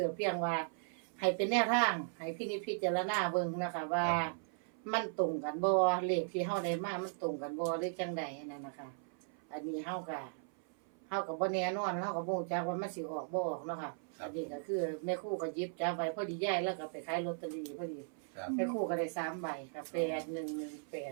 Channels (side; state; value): left; silent; 53 dB below the other